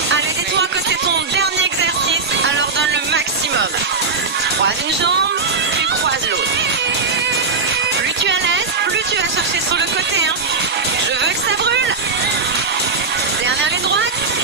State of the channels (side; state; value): left; quieter; 4.4 dB